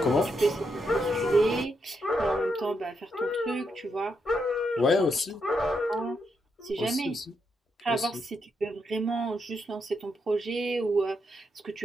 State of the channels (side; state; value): both; normal; correlation 0.81